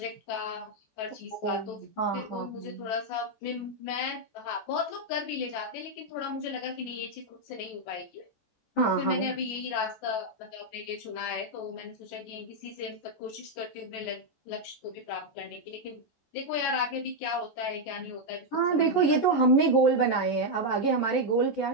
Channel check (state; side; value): late; right; 14 ms